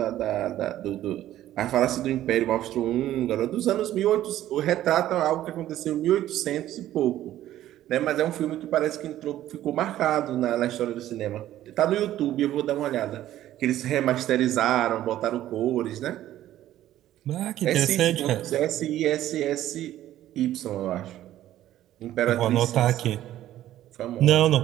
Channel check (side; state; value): left; quieter; 13.2 dB